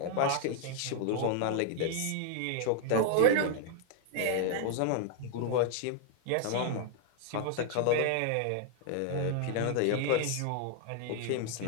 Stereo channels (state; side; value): different; both; correlation 0.00